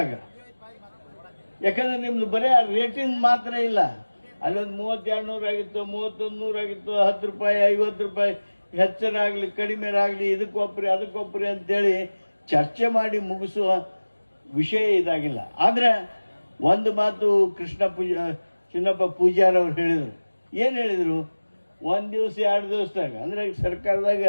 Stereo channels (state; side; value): inverted; both; correlation -1.00